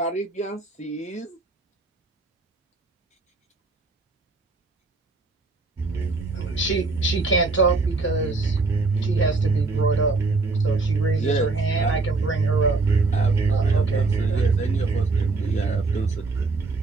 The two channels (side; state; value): left; quieter; 3.7 dB